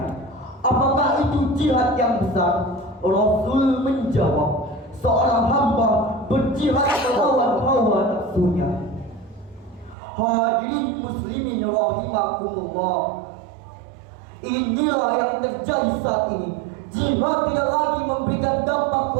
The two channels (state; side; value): drops out; left; at 10.0 s